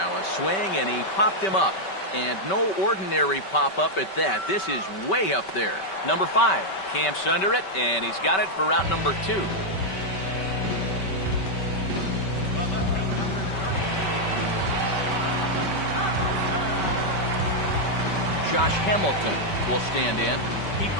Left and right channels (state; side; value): late; right; 5.2 ms